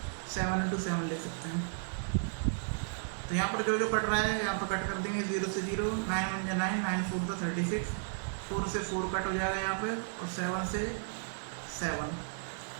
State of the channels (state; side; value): silent; left; 55 dB below the other